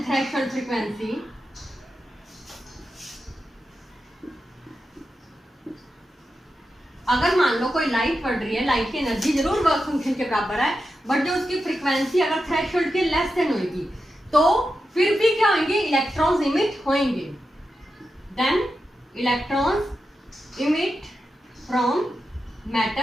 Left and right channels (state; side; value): normal; both; correlation 0.89